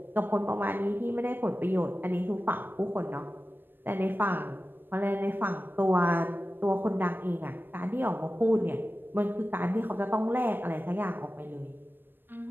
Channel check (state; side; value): late; left; 0.096 ms